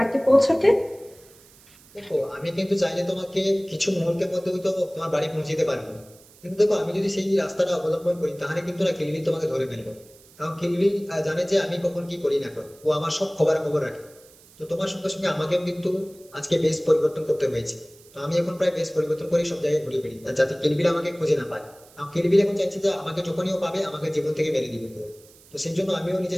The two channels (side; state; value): right; noise; hiss, 25 dB below the sound